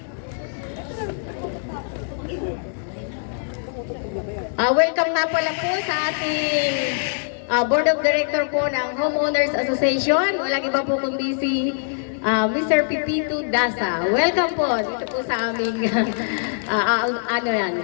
Welcome nga pala po sa ating Board of Director po ng Homeowners Association. Walang iba po kundi si Mr. Pipito Dasa. Welcome po dito po sa aming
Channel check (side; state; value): right; silent; digital silence